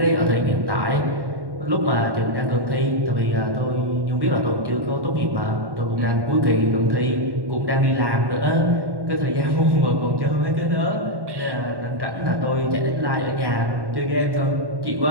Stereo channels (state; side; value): late; left; 1.1 ms